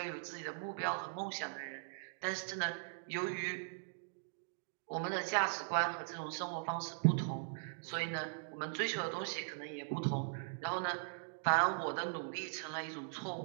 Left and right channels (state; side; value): silent; left; digital silence